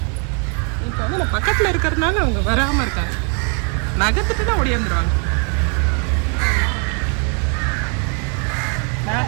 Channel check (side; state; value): left; quieter; 39.1 dB